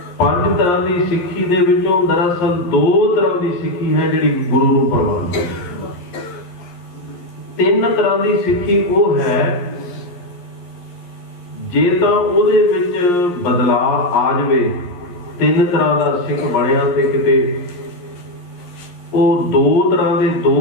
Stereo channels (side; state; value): right; late; 11 ms